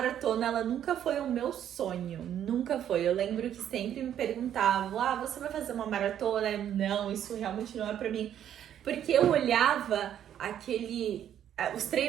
ela nunca foi o meu sonho, nunca foi. Eu lembro que sempre me perguntavam, você vai fazer uma maratona? Não, isso realmente não é pra mim. Porque eu olhava os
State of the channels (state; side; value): quieter; left; 10.2 dB